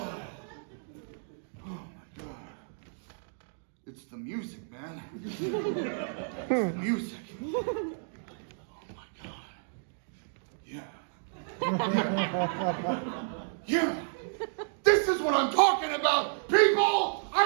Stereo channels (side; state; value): left; silent; digital silence